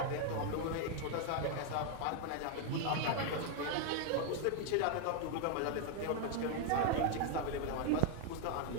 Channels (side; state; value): both; different; correlation 0.00